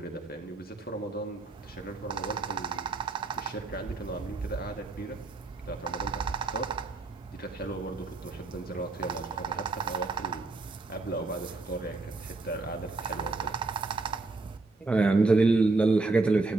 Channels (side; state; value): left; quieter; 3.4 dB